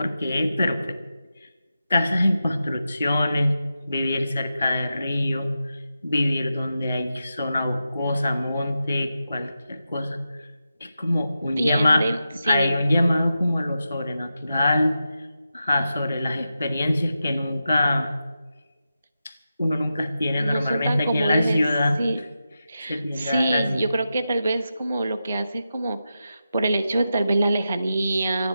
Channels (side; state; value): both; inverted; correlation -0.90